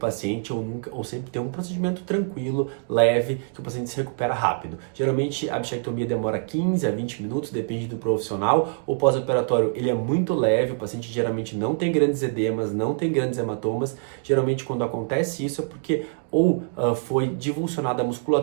ou sempre ter um procedimento tranquilo, leve, que o paciente se recupera rápido. Geralmente a bichectomia demora 15 a 20 minutos, depende do profissional. O pós-operatório ele é muito leve, o paciente geralmente não tem grandes edemas, não tem grandes hematomas. Geralmente quando acontece isso é porque ou foi divulsionada a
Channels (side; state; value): left; silent; digital silence